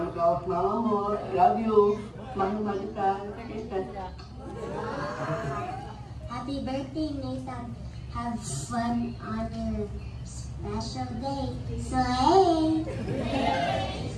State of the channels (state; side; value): identical; both; correlation 1.00